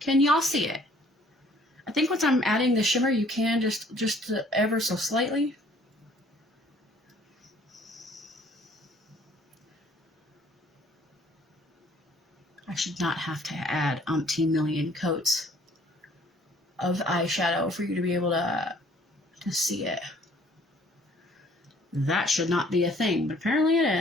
Can y'all see it? I think once I'm adding the shimmer, you can just ever so slightly. I should not have to add umpteen million coats of eyeshadow for you to be able to see it. That should not be a thing, but apparently it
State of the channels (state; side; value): normal; both; correlation 0.58